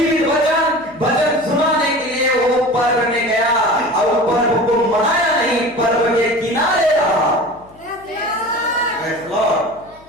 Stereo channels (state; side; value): noise; left; hum, 26 dB below the sound